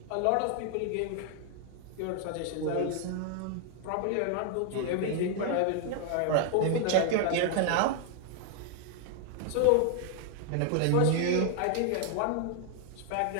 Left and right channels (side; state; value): both; different; correlation 0.00